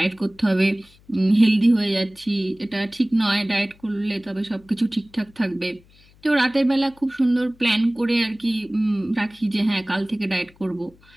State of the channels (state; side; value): noise; left; hum, 29 dB below the sound